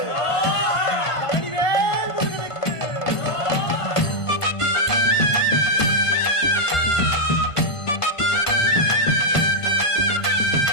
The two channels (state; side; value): late; right; 1.5 ms